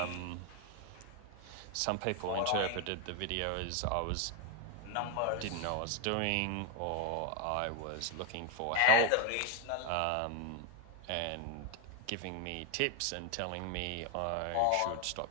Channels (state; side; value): different; both; correlation 0.01